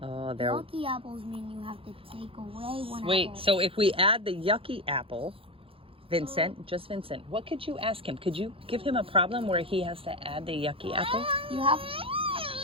Oh, there. Yucky apples mean you have to take away one Wait, apple. so if we add the yucky apple, Vincent, just Vincent, what could you ask him? Could you give him a problem where he has to add the yucky apple? You have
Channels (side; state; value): left; late; 0.27 ms